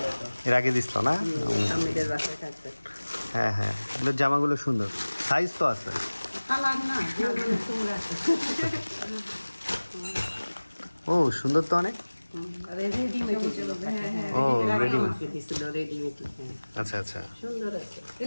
এর আগে দিছিল না? হ্যাঁ হ্যাঁ, এগুলোর জামাগুলো সুন্দর, সাইজ তো আছে। ও সুন্দর তো অনেক। ও রেডিমেড। আচ্ছা আচ্ছা।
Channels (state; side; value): inverted; both; correlation -1.00